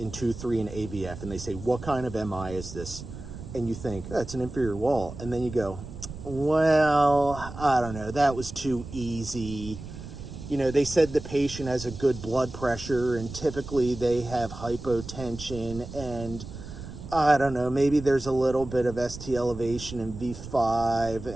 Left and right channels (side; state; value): right; noise; rumble, 12 dB below the sound